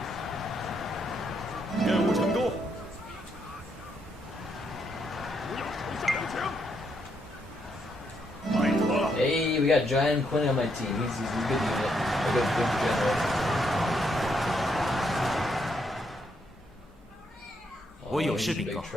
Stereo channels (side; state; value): both; normal; correlation 0.76